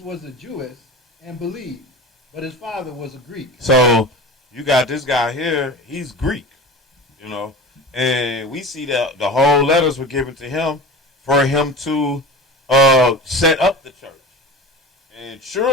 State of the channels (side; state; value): both; normal; correlation 0.33